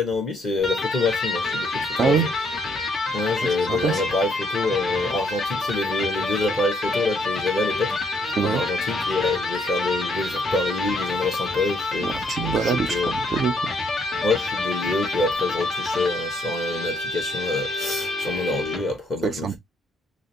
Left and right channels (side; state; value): both; normal; correlation 0.69